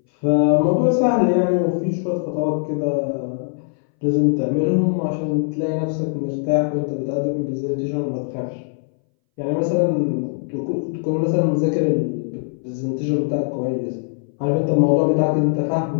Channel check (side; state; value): right; silent; 62 dB below the other